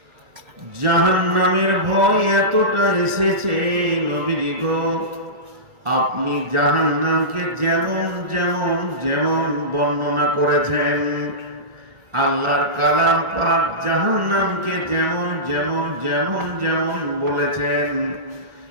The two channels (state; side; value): late; left; 1.4 ms